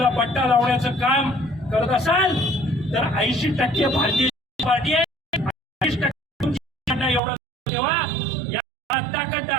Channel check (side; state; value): left; drops out; at 7.2 s